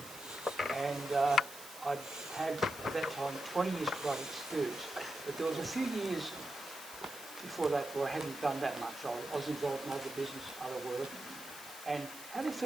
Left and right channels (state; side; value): noise; right; hiss, 14 dB below the sound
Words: and I'd had at that time 20 years karate experience, but there was a few years before that where I hadn't done that much. I was involved in other business, other work, and had a